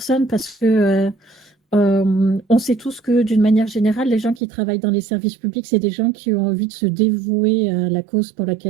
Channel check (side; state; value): left; drops out; at 4.4 s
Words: parce que on sait tous que d'une manière générale, les gens qui travaillent dans les services publics, c'est des gens qui ont envie de se dévouer à la cause pour